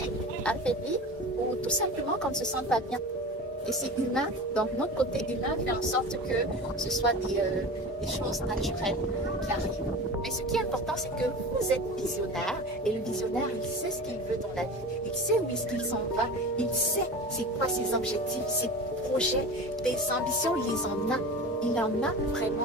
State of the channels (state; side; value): normal; both; correlation 0.32